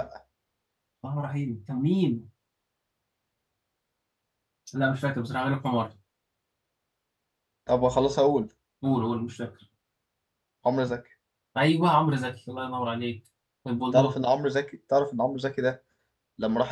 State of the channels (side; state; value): both; identical; correlation 1.00